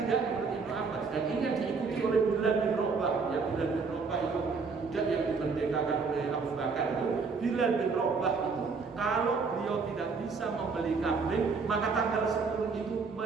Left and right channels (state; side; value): quieter; left; 4.8 dB